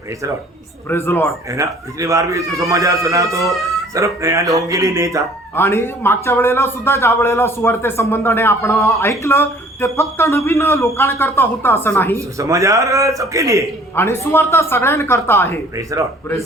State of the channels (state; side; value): normal; both; correlation 0.54